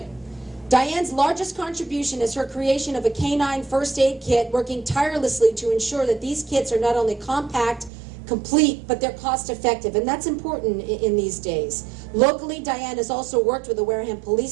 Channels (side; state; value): left; drops out; at 7.9 s